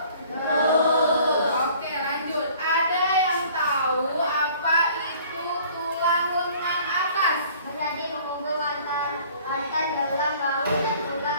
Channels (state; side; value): inverted; both; correlation -0.52